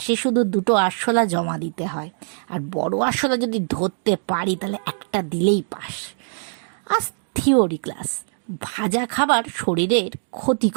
শুধু 2টো আরশোলা জমা দিতে হয়। আর বড় আরশোলা যদি ধরতে পারি তাহলে একটা দিলেই পাস। আজ থিওরি ক্লাস। ভাজা খাবার শরীরের ক্ষতি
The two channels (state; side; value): silent; left; digital silence